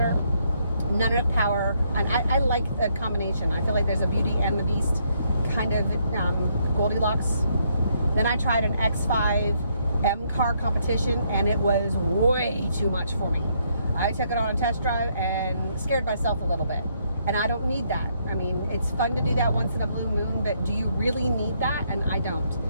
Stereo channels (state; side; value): inverted; both; correlation -0.73